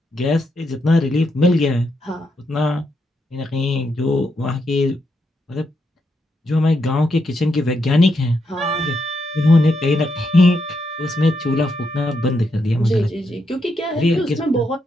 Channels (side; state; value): both; normal; correlation 0.81